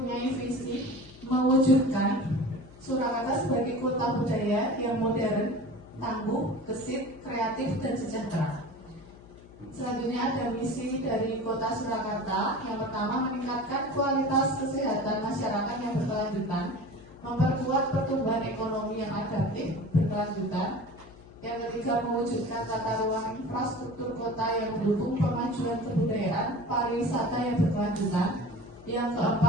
visi mewujudkan Surakarta sebagai kota budaya yang modern, tangguh, gesit, kreatif, dan sejahtera. Selanjutnya ada misi dari Kota Surakarta. Yang pertama, meningkatkan kualitas kesehatan masyarakat yang berkelanjutan, memperkuat pertumbuhan ekonomi yang adaptif berkelanjutan. Yang ketiga, mewujudkan tata ruang infrastruktur kota yang mendukung pemajuan kebudayaan pariwisata yang berkelanjutan. Yang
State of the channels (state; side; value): noise; left; hum, 21 dB below the sound